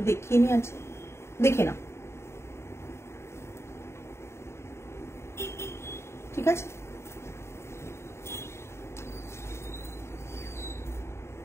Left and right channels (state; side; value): late; right; 0.13 ms